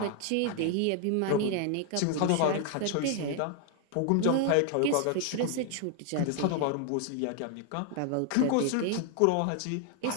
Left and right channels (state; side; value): different; both; correlation 0.00